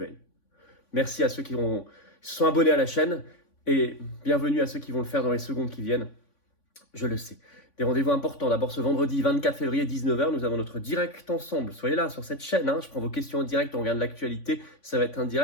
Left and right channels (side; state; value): right; late; 3.5 ms